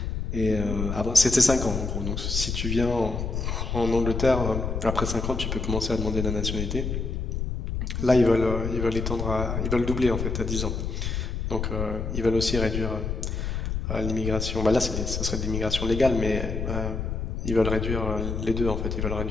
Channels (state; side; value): noise; left; rumble, 3 dB below the sound